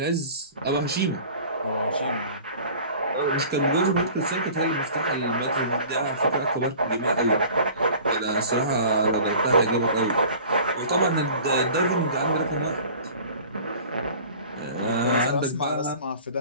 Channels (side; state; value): both; inverted; correlation -0.44